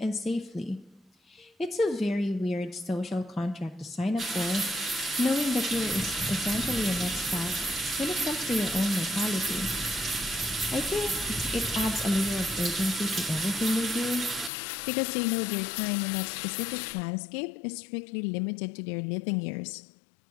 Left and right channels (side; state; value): right; drops out; at 14.5 s